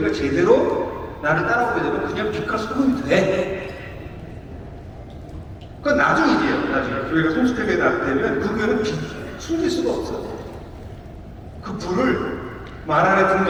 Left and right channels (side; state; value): both; identical; correlation 1.00